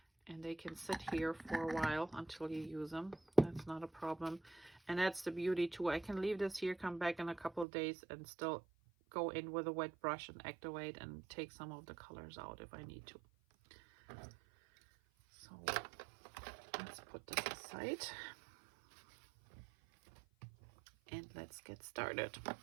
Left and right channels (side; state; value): left; drops out; at 7.7 s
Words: and they can sit here for a while until you use them. That's not a problem. And that's the beauty too. I can leave this here, come back in a couple of days, and still go in with a wet brush and activate and take some of the colors out if I need to. So let's put this aside and let's get started.